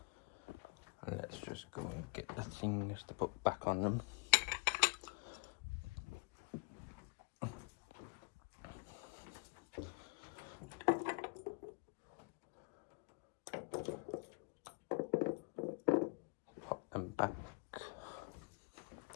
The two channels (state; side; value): quieter; right; 33.0 dB